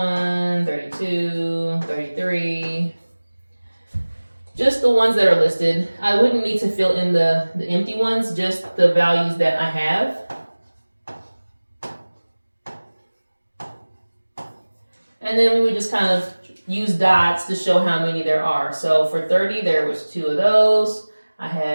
32, 33, just the ones that are listed. I wouldn't need to fill in the empty ones, just the values that I have. And then we would just kind of use dots to show how many there are. So for 30, there was 2 of those. I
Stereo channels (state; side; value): inverted; both; correlation -1.00